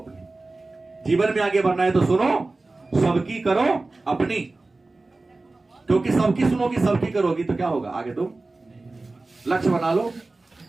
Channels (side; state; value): left; quieter; 3.3 dB